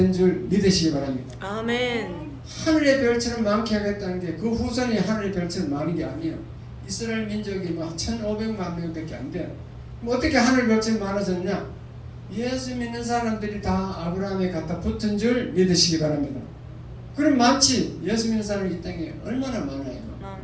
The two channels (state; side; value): identical; both; correlation 1.00